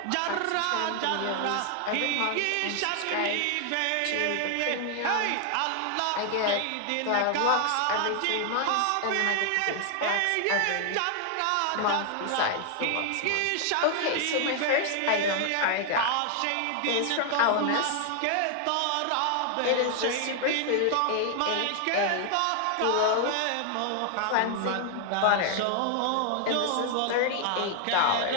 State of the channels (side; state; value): both; different; correlation 0.00